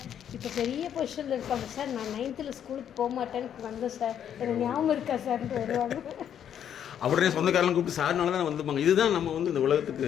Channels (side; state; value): right; quieter; 9.3 dB